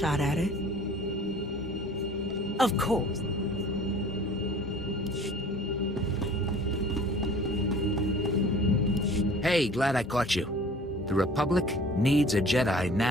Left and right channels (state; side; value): normal; both; correlation 0.47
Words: at it. Of course. Hey, glad I caught you. The Republic needs a Jedi